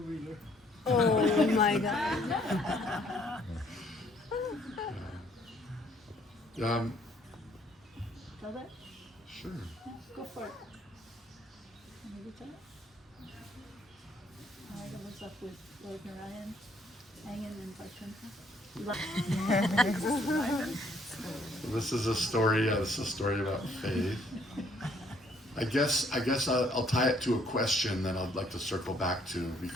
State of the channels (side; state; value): both; normal; correlation 0.65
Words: Oh my God. Tell that? Sure. Yeah, go for it. Maybe tell it. Narada was up with Lord Narayan, hanging in Vaikuntha. This is a story. This is a story about faith. I guess I'll tie it to a question that I'd like to circle back to,